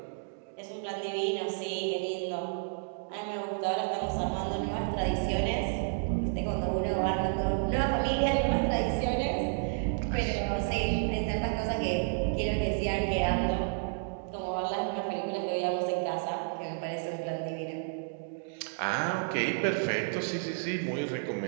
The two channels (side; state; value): left; silent; digital silence